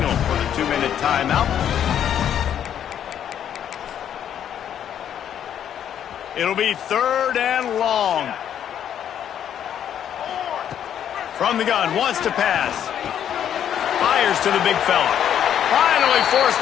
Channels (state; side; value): quieter; right; 9.7 dB